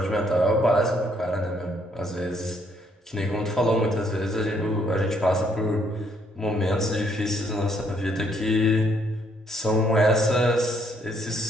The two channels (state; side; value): normal; both; correlation 0.69